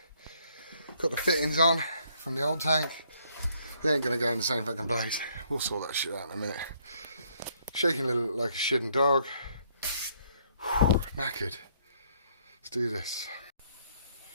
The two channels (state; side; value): inverted; both; correlation -0.67